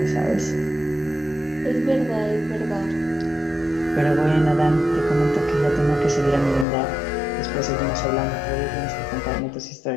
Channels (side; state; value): right; drops out; at 6.7 s